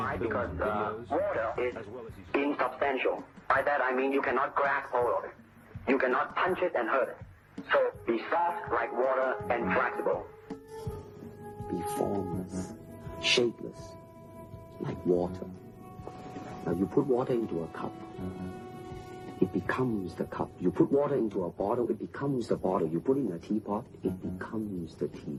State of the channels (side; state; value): both; identical; correlation 1.00